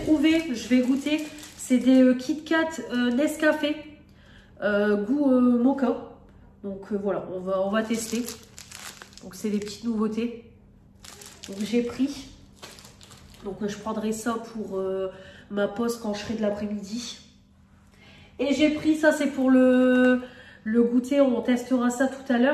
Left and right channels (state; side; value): identical; both; correlation 1.00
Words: je vais goûter, c'est des Kit Kat Nescafé goût mocha. Donc voilà, on va tester. Donc c'est des petites nouveautés. Donc j'ai pris. Donc je prendrai ça pour ma pause quand je serai de l'après-midi. Et j'ai pris ça, c'est pour le goûter, on testera ça tout à